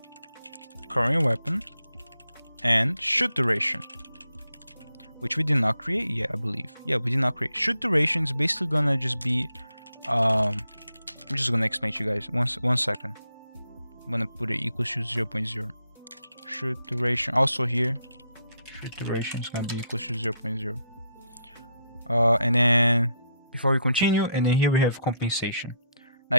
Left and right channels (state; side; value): inverted; both; correlation -0.77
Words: current weapon, and shoot duration, which we did not create yet, I believe. Yeah, we did not create. Shoot duration is basically gonna just be, I'm just gonna explain to you guys. One second. I'm gonna put it equals to 0.0. Shoot duration also here. Shoot duration is gonna be equals to 0.0. And then before we continue, and then here we have compensation. Now